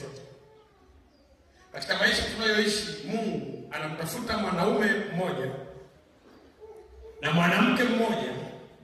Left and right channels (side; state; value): both; identical; correlation 1.00